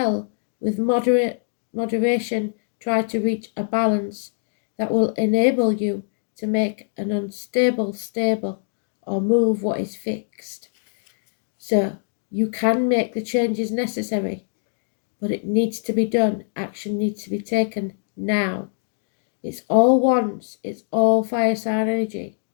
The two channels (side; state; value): right; silent; digital silence